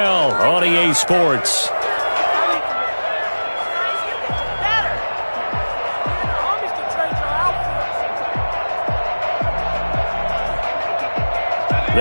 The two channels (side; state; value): both; inverted; correlation -1.00